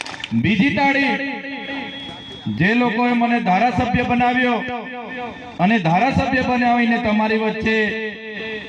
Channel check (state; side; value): identical; both; correlation 1.00